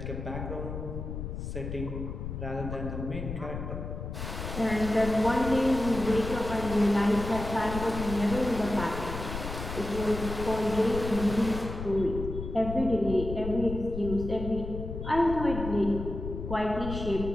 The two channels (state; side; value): noise; left; rumble, 7 dB below the sound